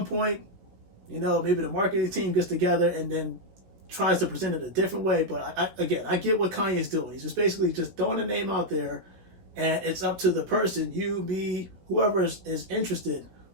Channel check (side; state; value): left; late; 16 ms